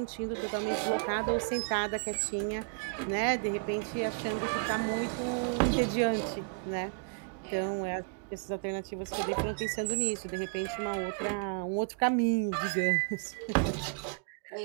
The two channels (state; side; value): quieter; left; 38.2 dB